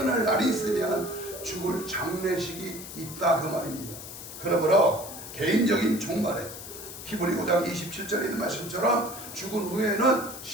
날이 있으면 죽을 장례식이 있다 그 말입니다. 그러므로 개인적인 종말에 히브리 5장 27절에 있는 말씀처럼 죽은 후에는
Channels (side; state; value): left; noise; hiss, 12 dB below the sound